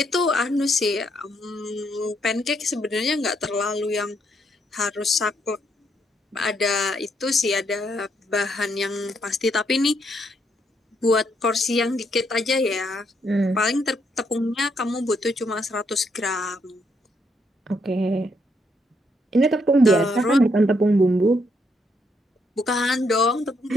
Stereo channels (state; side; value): normal; both; correlation 0.75